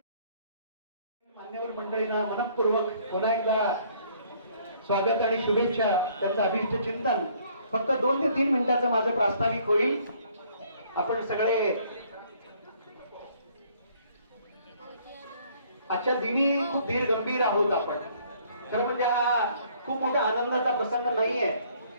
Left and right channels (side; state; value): both; inverted; correlation -0.62